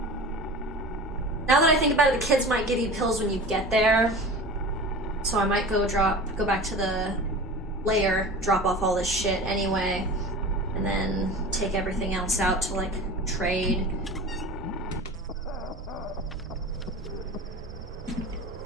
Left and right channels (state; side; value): normal; both; correlation 0.35